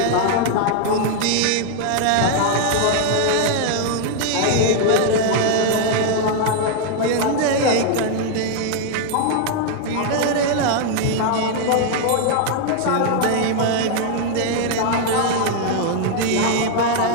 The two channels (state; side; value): different; both; correlation 0.00